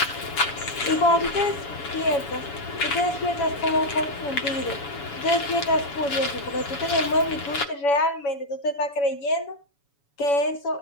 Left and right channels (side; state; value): right; late; 7.1 ms